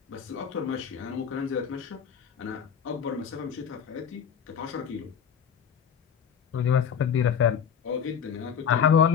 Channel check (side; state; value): right; quieter; 7.6 dB